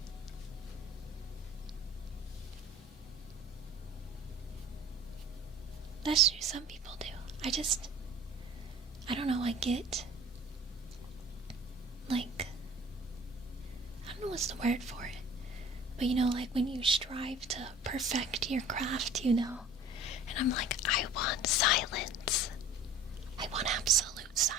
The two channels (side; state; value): both; normal; correlation 0.44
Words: That's true, some people do. I don't know, I get, like, I don't know what's the word for it, but you know, like when you strive to perfect your craft, you know, and I'm like, I want silence. I want absolute